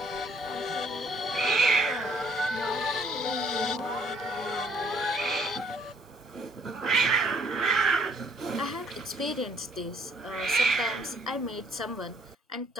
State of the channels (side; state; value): both; normal; correlation 0.63